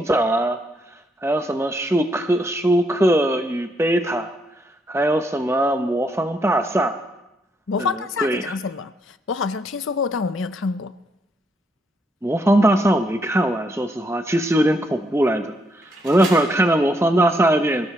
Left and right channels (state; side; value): normal; both; correlation 0.75